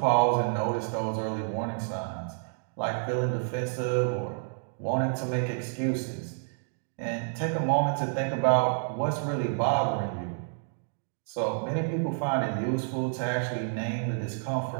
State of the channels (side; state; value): left; silent; digital silence